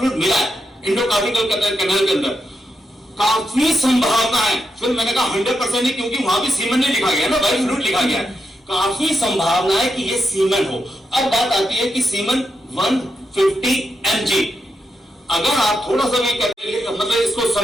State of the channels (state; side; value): normal; both; correlation 0.84